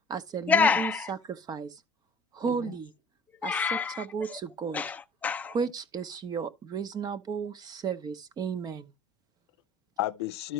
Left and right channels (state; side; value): normal; both; correlation 0.49